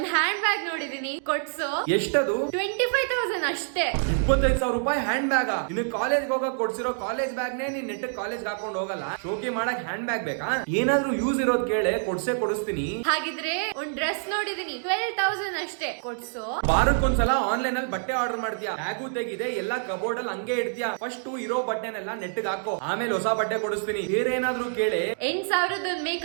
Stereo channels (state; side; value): silent; left; digital silence